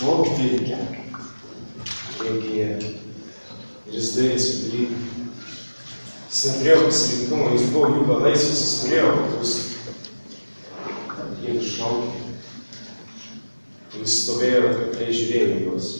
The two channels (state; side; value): inverted; both; correlation -1.00